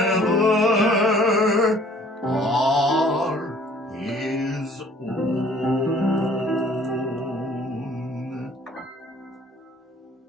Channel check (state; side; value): normal; both; correlation 0.55